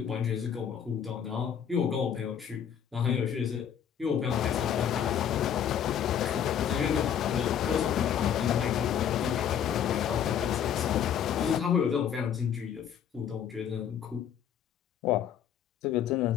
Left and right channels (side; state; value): right; quieter; 8.8 dB